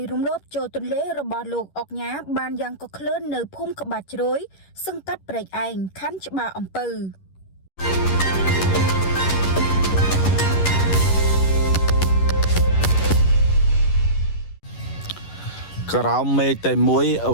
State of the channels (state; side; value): late; right; 11 ms